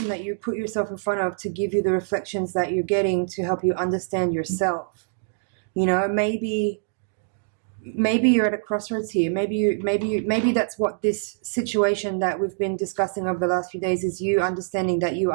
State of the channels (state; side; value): silent; left; digital silence